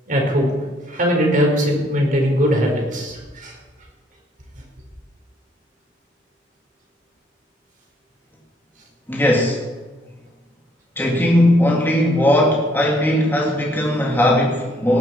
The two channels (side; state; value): both; normal; correlation 0.67